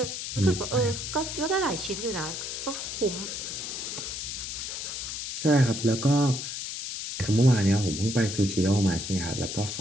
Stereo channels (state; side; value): noise; left; hiss, 5 dB below the sound